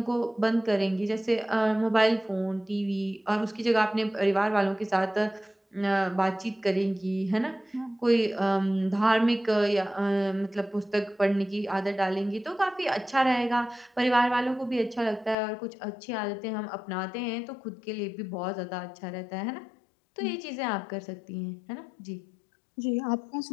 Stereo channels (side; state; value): right; drops out; at 15.4 s